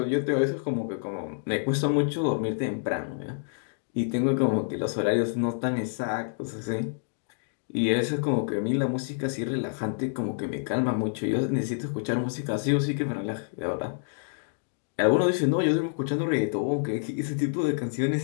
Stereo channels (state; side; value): silent; right; digital silence